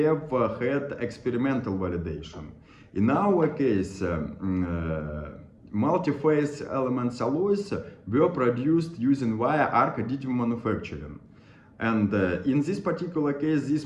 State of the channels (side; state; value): both; identical; correlation 1.00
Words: had experimental validation. In our case, multi-phase elements alloys were produced using via arc additive manufacturing. And in this particular case,